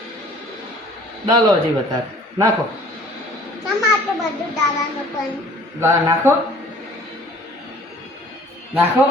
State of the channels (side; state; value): both; normal; correlation 0.53